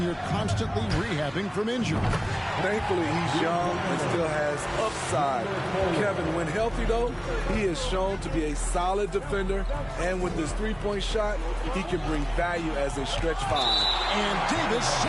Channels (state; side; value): identical; both; correlation 1.00